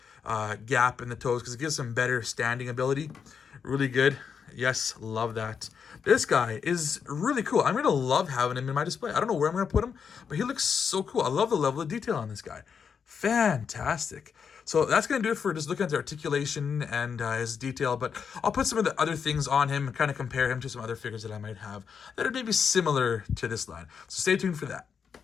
gap in the toes because it gives them better standing ability. Really good. Yes, love that. This guy is really cool. I'm going to love having him in my display. I don't know where I'm going to put him, but he looks so cool. I love the level of detail on this guy. Fantastic. So that's going to do it for just looking at the articulation and his detail, but I'll put some of the other things on him and kind of compare him to some other figures that I might have that are maybe similar to this line. So stay tuned for that.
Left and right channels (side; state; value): right; quieter; 6.6 dB